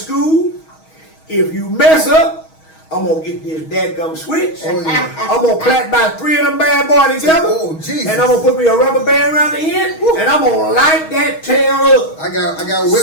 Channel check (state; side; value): late; right; 6.3 ms